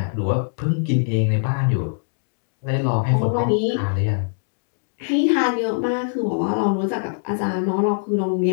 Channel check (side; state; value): right; silent; digital silence